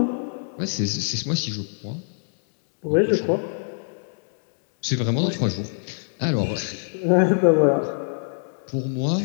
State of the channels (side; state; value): right; silent; digital silence